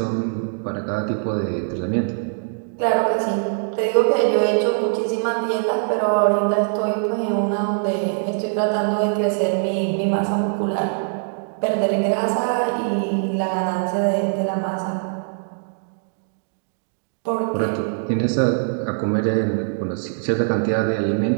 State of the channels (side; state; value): left; silent; digital silence